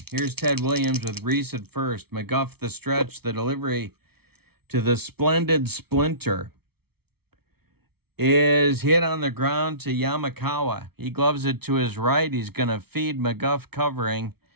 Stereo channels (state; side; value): late; left; 0.96 ms